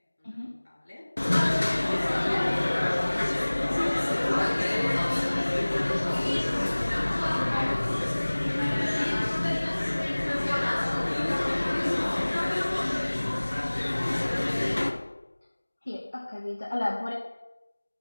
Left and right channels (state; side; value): inverted; both; correlation -1.00